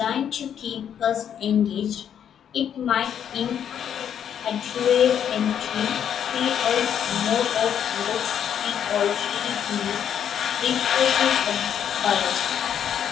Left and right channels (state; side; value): quieter; right; 9.0 dB